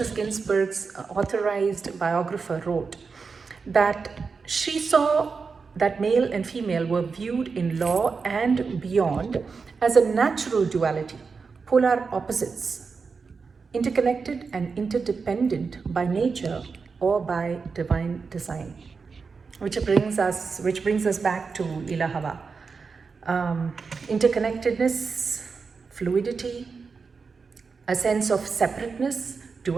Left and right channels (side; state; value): left; quieter; 5.0 dB